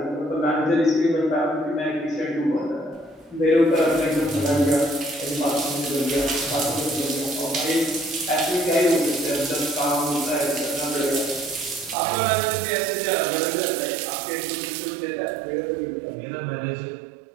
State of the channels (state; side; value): drops out; left; at 12.0 s